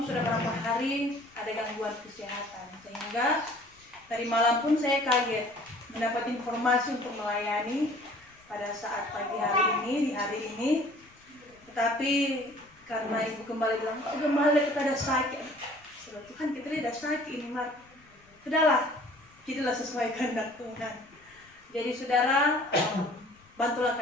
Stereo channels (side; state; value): left; noise; rumble, 29 dB below the sound